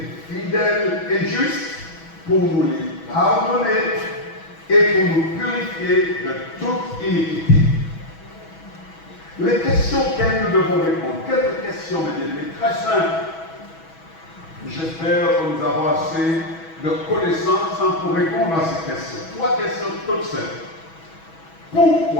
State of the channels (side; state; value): right; late; 6.1 ms